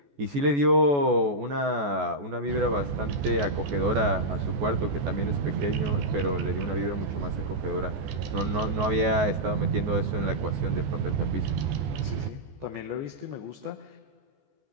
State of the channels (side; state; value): left; late; 14 ms